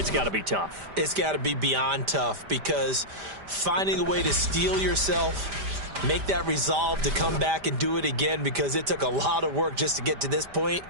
got to be tough. It's got to be beyond tough because finding a way to steel yourself, make that resolve to come back and do it again because it took a lot of work just to get to this point.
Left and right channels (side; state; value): left; late; 5.0 ms